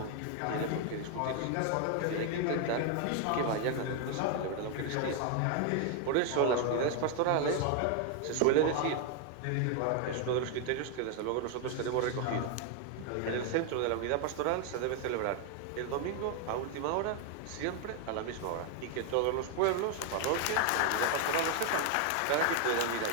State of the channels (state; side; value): different; both; correlation 0.01